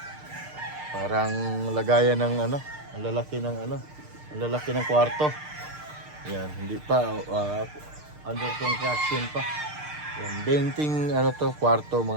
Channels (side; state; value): left; late; 6.6 ms